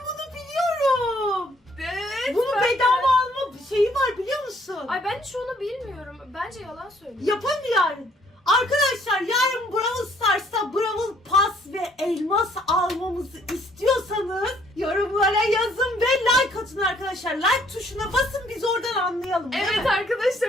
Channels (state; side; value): normal; both; correlation 0.64